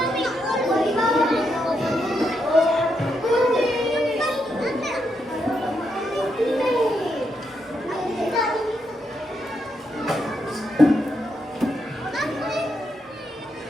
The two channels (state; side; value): normal; both; correlation 0.81